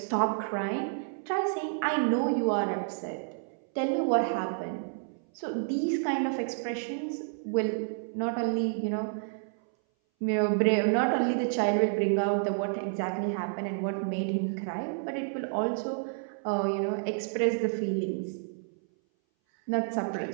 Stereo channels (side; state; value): left; silent; 58 dB below the other